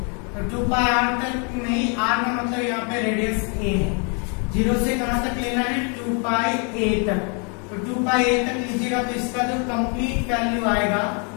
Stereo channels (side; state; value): right; quieter; 37.4 dB